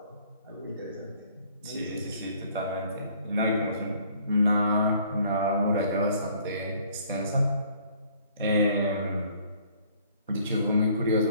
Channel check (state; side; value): inverted; both; correlation -0.59